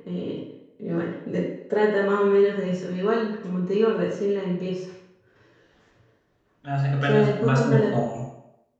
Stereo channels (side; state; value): both; identical; correlation 1.00